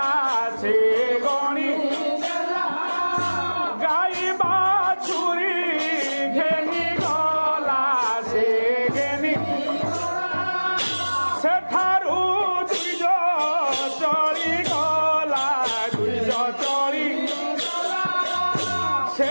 সে গণি গাই বাছুরি ঘেনি সেঠারু দুইজ চলি গলা দুইজ চলি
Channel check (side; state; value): both; inverted; correlation -1.00